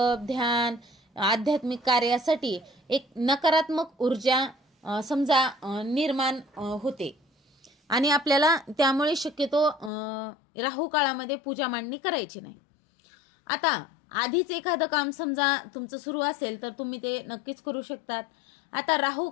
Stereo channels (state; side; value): drops out; right; at 9.9 s